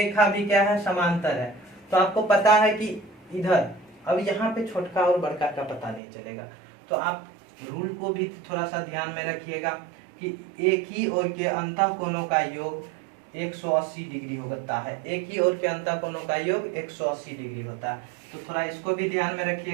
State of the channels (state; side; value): drops out; left; at 6.0 s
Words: भी क्या है समांतर है, तो आपको पता है कि इधर, अब यहाँ पे छोटका और बड़का का पता नहीं चलेगा, तो आप रूल को भी थोड़ा सा ध्यान में रखिएगा कि एक ही ओर के अंतः कोणों का योग 180 डिग्री होता है, एक ही ओर के अंतः कोणों का योग 180 डिग्री होता है, तो थोड़ा इसको भी ध्यान में